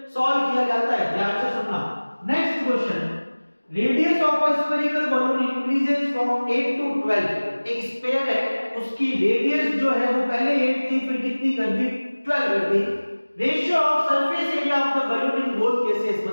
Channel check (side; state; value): both; inverted; correlation -1.00